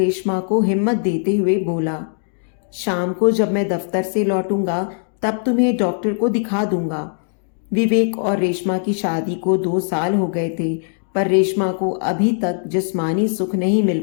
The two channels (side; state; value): right; silent; digital silence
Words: को हिम्मत देते हुए बोला, शाम को जब मैं दफ्तर से लौटूंगा तब तुम्हें डॉक्टर को दिखा दूंगा। विवेक और रेशमा की शादी को 2 साल हो गए थे, पर रेशमा को अभी तक जिस्मानी सुख नहीं